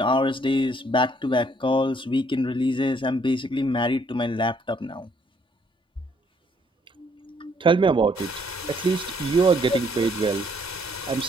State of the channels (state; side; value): normal; both; correlation 0.66